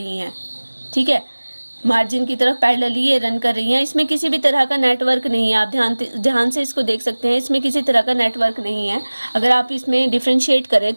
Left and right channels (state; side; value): inverted; both; correlation -1.00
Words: हैं, ठीक है, मार्जिन की तरफ पैरेलली ये रन कर रही हैं। इसमें किसी भी तरह का नेटवर्क नहीं है, आप ध्यान से इसको देख सकते हैं, इसमें किसी तरह का नेटवर्क नहीं है। अगर आप इसमें डिफ्रेंशिएट करें